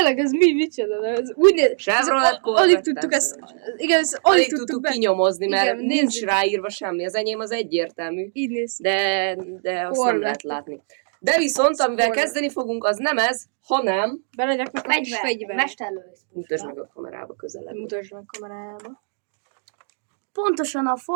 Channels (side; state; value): left; silent; digital silence